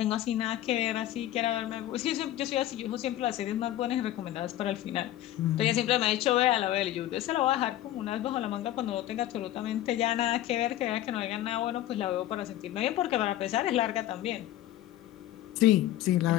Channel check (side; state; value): right; quieter; 13.7 dB